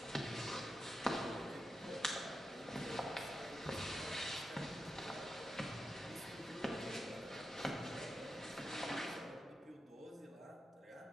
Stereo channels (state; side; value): normal; both; correlation 0.88